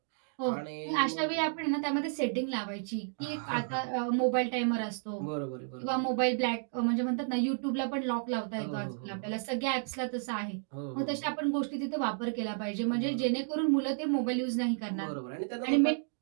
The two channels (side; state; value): left; silent; digital silence